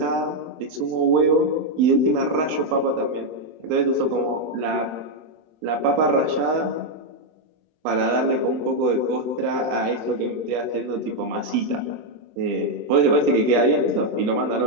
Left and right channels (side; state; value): left; late; 26 ms